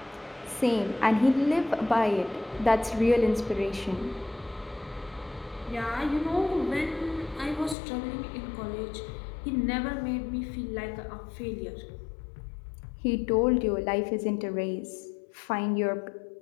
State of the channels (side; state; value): right; drops out; at 7.8 s